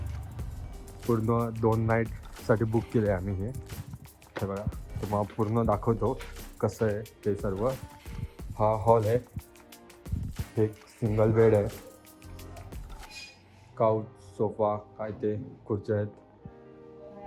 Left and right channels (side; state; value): both; identical; correlation 1.00